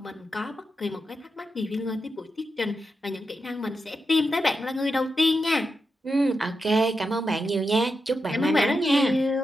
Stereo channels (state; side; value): normal; both; correlation 0.87